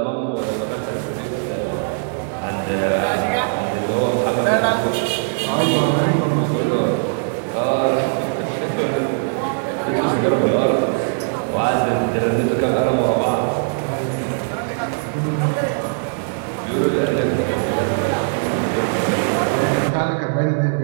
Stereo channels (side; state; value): left; silent; digital silence